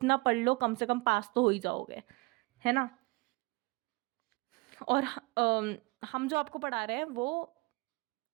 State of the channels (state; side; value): quieter; left; 25.6 dB